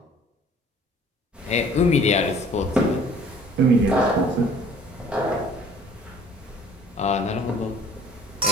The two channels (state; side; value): normal; both; correlation 0.52